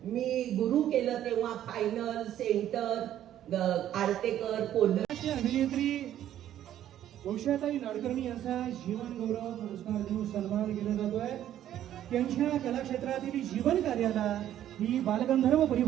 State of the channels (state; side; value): quieter; left; 11.6 dB